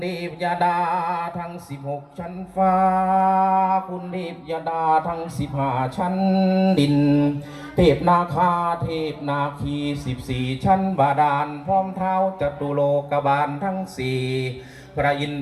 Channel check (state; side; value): identical; both; correlation 1.00